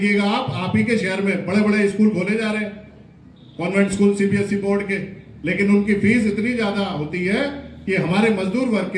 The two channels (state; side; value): identical; both; correlation 1.00